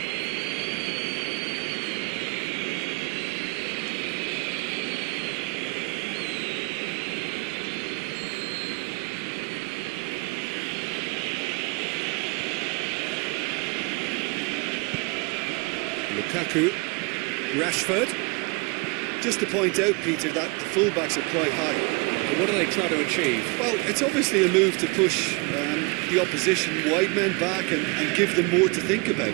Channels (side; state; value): left; quieter; 28.1 dB